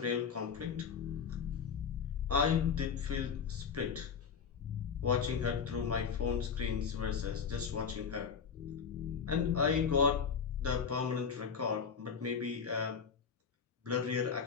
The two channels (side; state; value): right; quieter; 6.4 dB